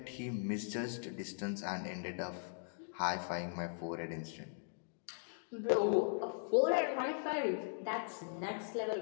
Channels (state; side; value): silent; right; digital silence